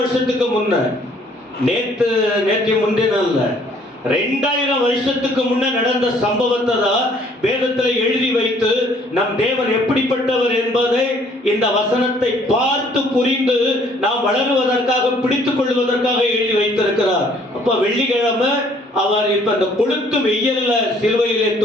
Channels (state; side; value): normal; both; correlation 0.61